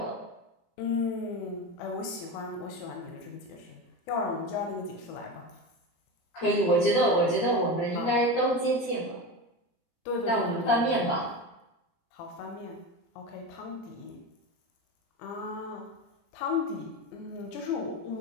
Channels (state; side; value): late; right; 17 ms